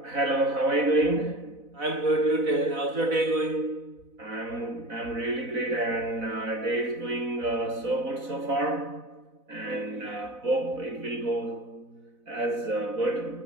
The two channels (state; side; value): late; left; 4.0 ms